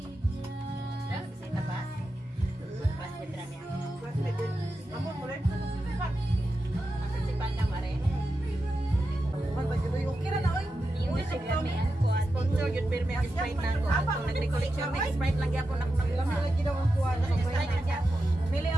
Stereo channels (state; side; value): normal; both; correlation 0.90